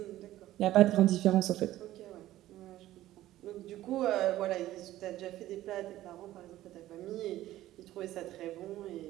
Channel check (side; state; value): left; quieter; 14.6 dB